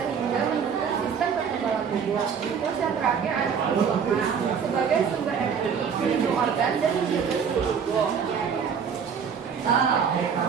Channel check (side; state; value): left; quieter; 6.8 dB